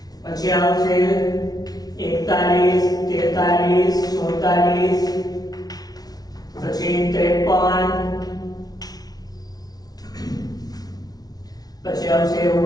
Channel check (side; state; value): right; late; 0.19 ms